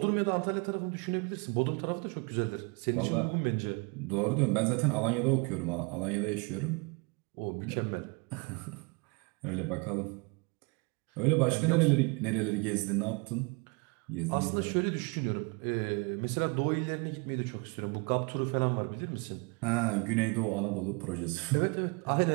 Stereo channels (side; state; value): left; quieter; 31.2 dB